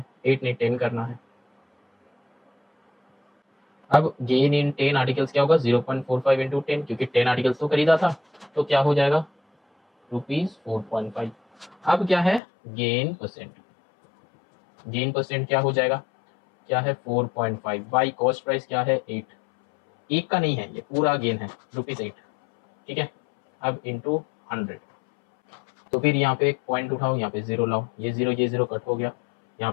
8 ने 10 करना है। अब गेन इन 10 आर्टिकल्स क्या होगा, 0.45 इंटू 10, क्योंकि 10 आर्टिकल्स तो खरीदा था, तो क्या हो जाएगा ₹4.5। अब क्या है गेन परसेंट, गेन परसेंट क्या हो जाएगा, क्या है 4.5 बाई कॉस्ट प्राइस क्या है 8। एक का नहीं है, ये पूरा गेन है ₹8। ठीक है, अब इंटू 100, तो फिर यहाँ पे एक पॉइंट उठाओ, यहाँ पे 0 लाओ, ये 0 कट हो गया,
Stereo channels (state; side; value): drops out; right; at 12.4 s